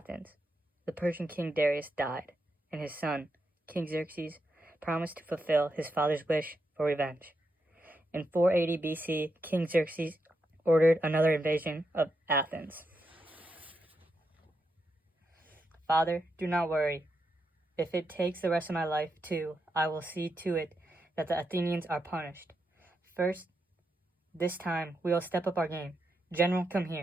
The Persian king Darius died, and his son, King Xerxes, promised to fulfill his father's wish for revenge. In 480 BC, King Xerxes ordered another invasion of Athens. Father, do not worry. If it takes the rest of my life too, I will see to it that the Athenians are punished. First, this time, we will step up our game. General, come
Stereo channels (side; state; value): both; normal; correlation 0.84